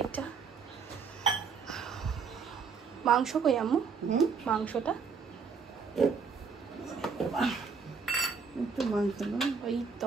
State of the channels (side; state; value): left; quieter; 5.5 dB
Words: মাংস কই আম্মু? মাংসটা ওই তো